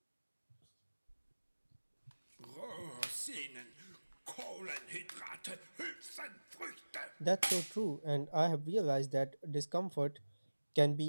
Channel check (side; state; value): both; inverted; correlation -1.00